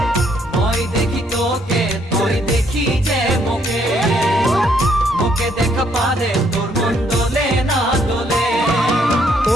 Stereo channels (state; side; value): normal; both; correlation 0.69